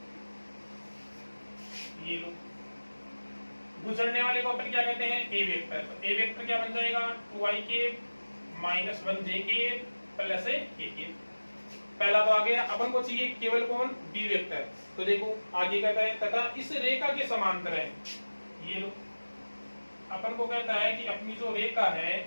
ये लो, गुजरने वाले को अपन क्या कहते हैं ए वेक्टर। तो ए वेक्टर क्या बन जाएगा 2i के -1j के + k के। पहला तो आ गया, अपन को चाहिए केवल कौन बी वेक्टर। तो देखो आगे कहता है तथा इस रेखा के समांतर है। ये लो, अपन को कहता है कि अपनी जो रेखा है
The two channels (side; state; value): both; inverted; correlation -1.00